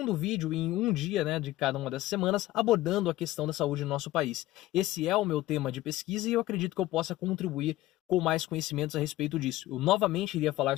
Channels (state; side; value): quieter; right; 16.2 dB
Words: vídeo em um dia, de cada uma dessas semanas, abordando a questão da saúde no nosso país. Esse é o meu tema de pesquisa e eu acredito que eu possa contribuir com mais conhecimentos a respeito disso. Eu novamente iria falar